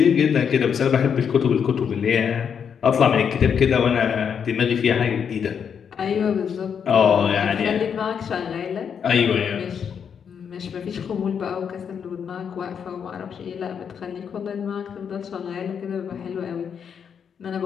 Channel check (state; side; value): quieter; right; 7.3 dB